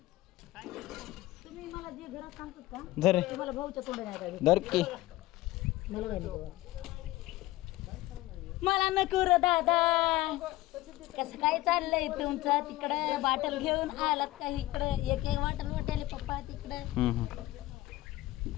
धर धर की मला नको रे दादा कसं काय चाललंय तुमचं तिकडं बाटल घेऊन आलात का इकडं एक एक वाटल वाटेल पप्पा तिकडं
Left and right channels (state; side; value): quieter; right; 17.4 dB